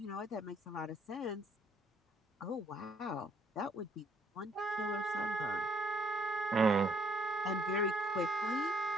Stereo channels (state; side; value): normal; both; correlation 0.65